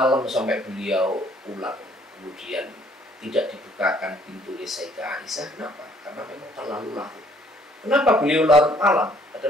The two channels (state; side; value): normal; both; correlation 0.62